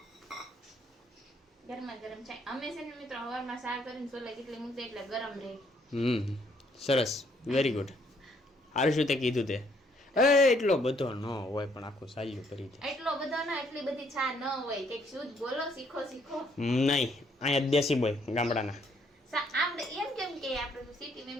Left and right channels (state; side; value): normal; both; correlation 0.69